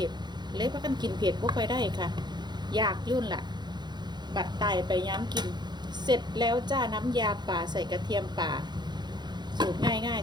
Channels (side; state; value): left; late; 0.21 ms